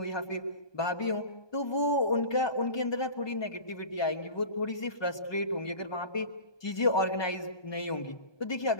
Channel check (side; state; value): right; late; 1.2 ms